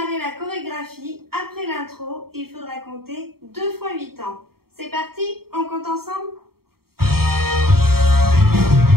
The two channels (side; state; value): left; late; 0.94 ms